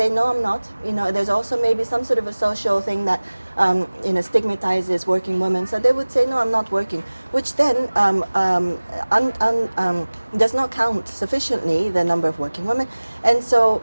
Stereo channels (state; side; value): inverted; both; correlation -1.00